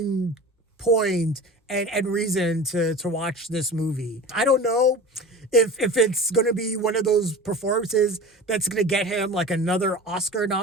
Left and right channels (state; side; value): normal; both; correlation 0.34